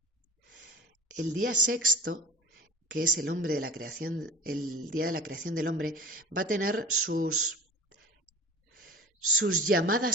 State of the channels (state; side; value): normal; both; correlation 0.39